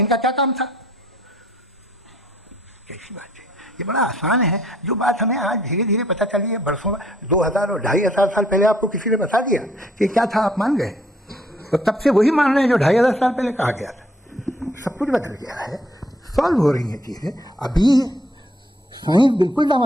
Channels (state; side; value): normal; both; correlation 0.64